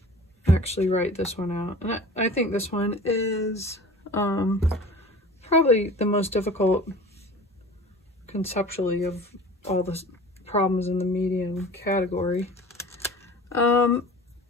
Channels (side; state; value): both; normal; correlation 0.41